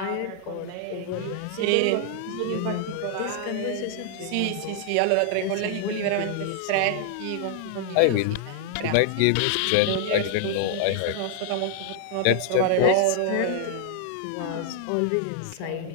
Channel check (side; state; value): both; different; correlation 0.00